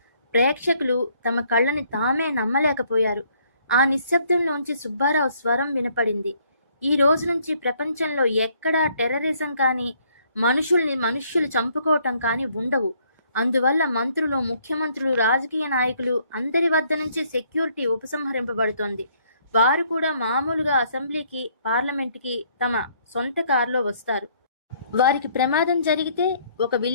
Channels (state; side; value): inverted; both; correlation -0.66